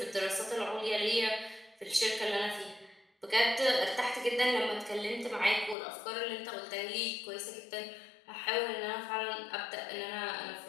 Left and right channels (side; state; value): right; drops out; at 5.8 s